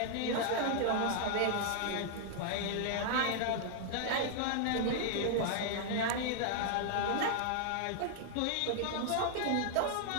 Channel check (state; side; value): different; both; correlation 0.00